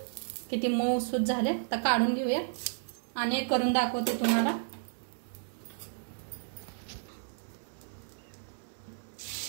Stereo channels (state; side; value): silent; left; digital silence